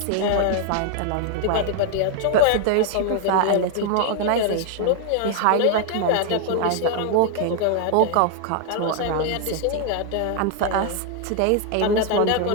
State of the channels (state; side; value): different; both; correlation 0.00